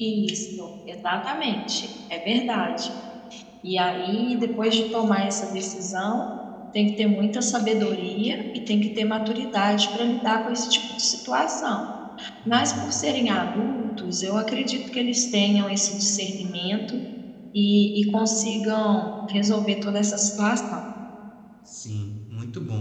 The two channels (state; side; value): identical; both; correlation 1.00